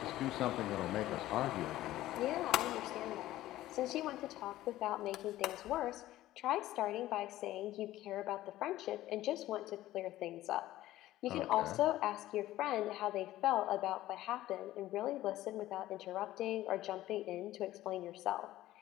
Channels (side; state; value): right; quieter; 15.1 dB